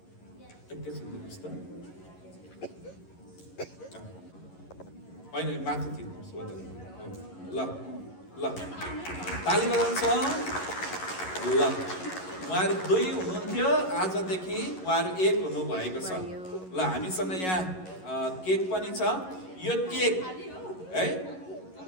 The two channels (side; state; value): right; late; 11 ms